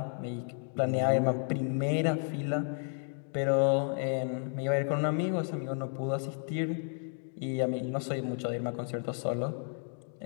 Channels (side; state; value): right; silent; 56 dB below the other